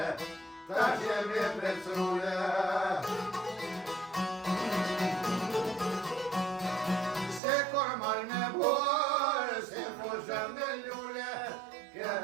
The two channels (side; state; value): left; drops out; at 7.4 s